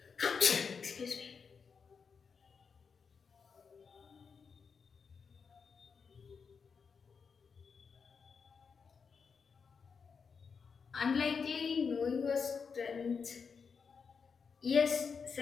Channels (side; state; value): right; quieter; 5.7 dB